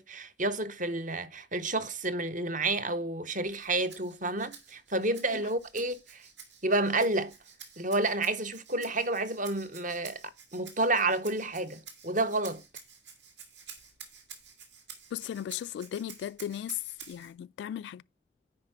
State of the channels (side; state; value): both; normal; correlation 0.02